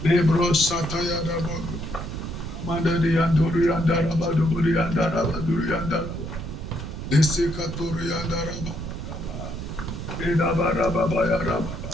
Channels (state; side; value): noise; right; rumble, 7 dB below the sound